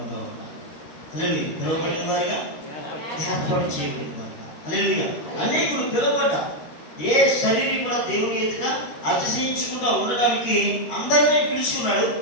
ఉండాలి. హల్లెలూయా. పిలువబడిన వారిగా, ఏర్పాటు చేయబడిన వారుగా. హల్లెలూయా. అనేకులు పిలువబడ్డ ఏ శరీరం కూడా దేవుని ఎదుట అతిశయించకుండా ఉండడానికి అందరినీ పిలుచుకున్నాడు,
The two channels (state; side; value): late; right; 13 ms